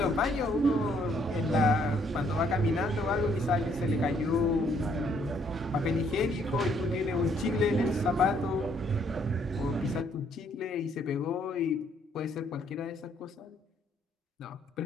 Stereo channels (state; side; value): normal; both; correlation 0.67